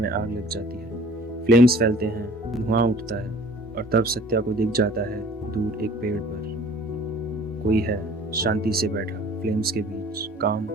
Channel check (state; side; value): normal; both; correlation 0.50